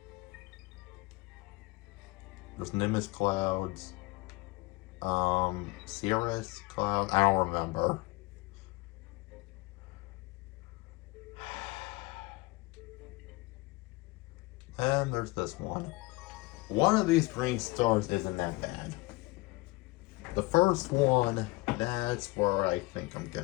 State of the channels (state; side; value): quieter; right; 22.8 dB